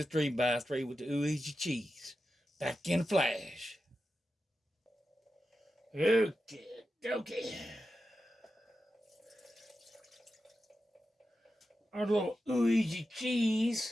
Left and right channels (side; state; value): both; normal; correlation 0.91